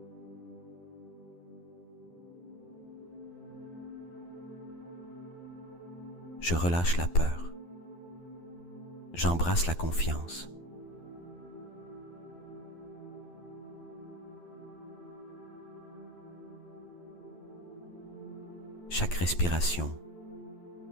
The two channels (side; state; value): right; late; 12 ms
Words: Je relâche la peur. J'embrasse la confiance. Chaque respiration